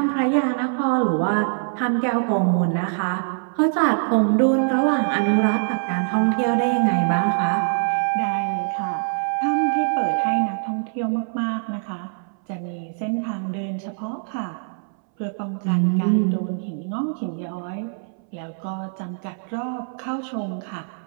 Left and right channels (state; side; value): silent; left; 63 dB below the other